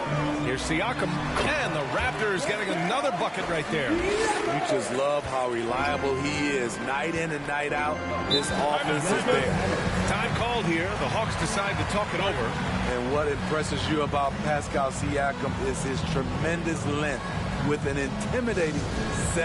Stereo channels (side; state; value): both; identical; correlation 1.00